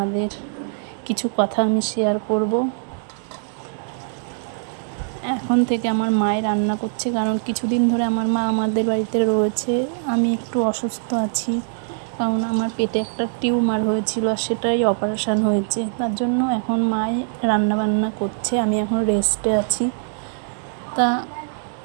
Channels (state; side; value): silent; left; 64 dB below the other